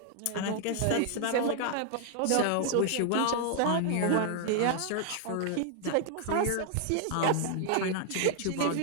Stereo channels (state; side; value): different; both; correlation -0.01